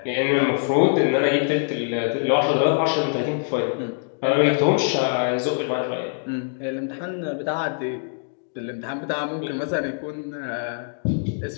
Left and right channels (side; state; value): right; silent; digital silence